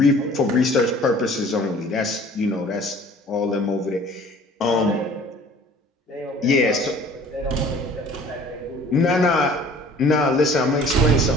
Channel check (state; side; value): normal; both; correlation 0.50